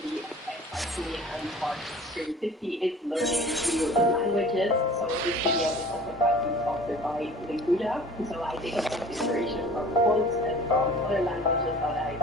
me and sparks creativity is learning new languages. So this video is also partly sponsored by Linguda. So I take a lot of inspiration from quotes and from other languages that I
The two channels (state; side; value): normal; both; correlation 0.45